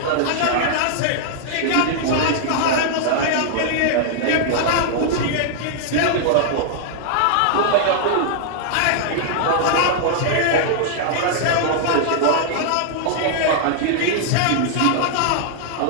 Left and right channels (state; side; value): different; both; correlation -0.01